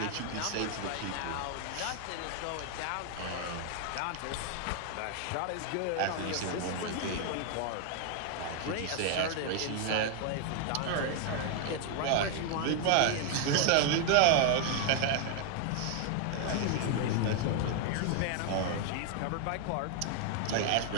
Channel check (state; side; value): different; both; correlation 0.00